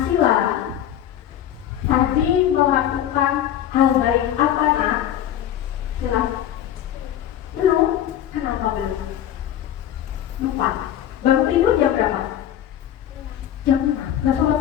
tadi melakukan hal baik apa nak? Silahkan. Belum? Kenapa belum? Lupa. Bangun tidur jam berapa? Jam 5. Nggak sholat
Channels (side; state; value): right; quieter; 11.0 dB